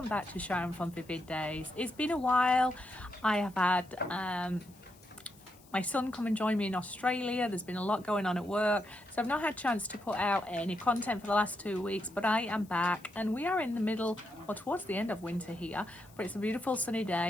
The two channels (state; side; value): noise; left; hiss, 26 dB below the sound